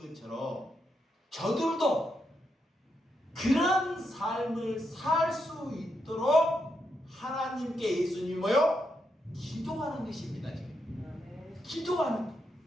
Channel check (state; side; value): normal; both; correlation 0.82